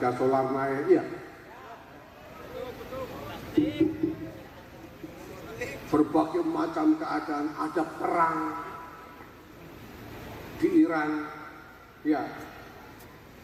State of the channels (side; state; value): both; identical; correlation 1.00